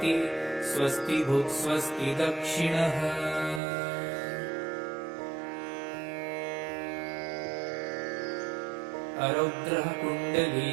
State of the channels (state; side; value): drops out; left; at 3.6 s